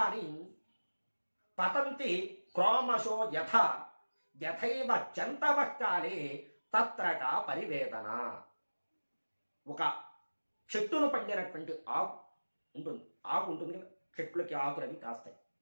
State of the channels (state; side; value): inverted; both; correlation -1.00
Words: పతంతి క్రోమశో యథైవ జంతవ కాలే తత్రక పరివేదన. ఒక చెట్టును పండినటువంటి ఆకు ఉంటుంది కదా, చెట్లకి ఆకులు అవి కాస్తాయి.